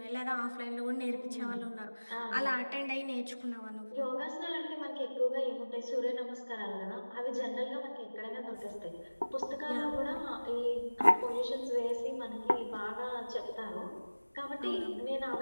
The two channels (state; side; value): inverted; both; correlation -1.00